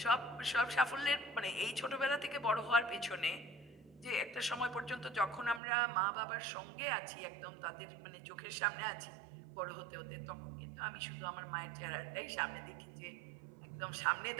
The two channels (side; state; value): left; drops out; at 5.6 s